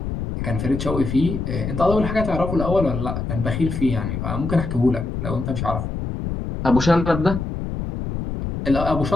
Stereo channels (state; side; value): noise; left; rumble, 4 dB below the sound